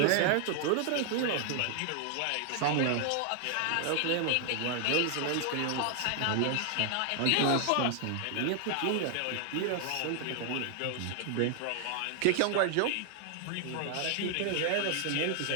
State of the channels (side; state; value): both; different; correlation 0.00